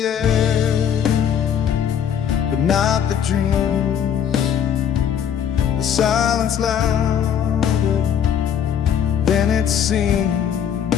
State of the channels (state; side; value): quieter; right; 8.7 dB